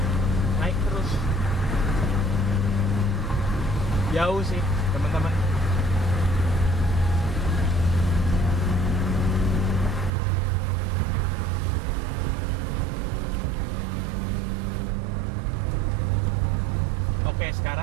naik terus. Jauh sih teman-teman. Oke,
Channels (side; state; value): left; drops out; at 10.1 s